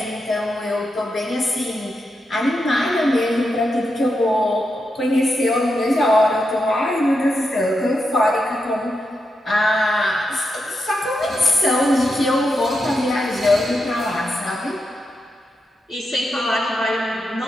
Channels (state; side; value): normal; both; correlation 0.85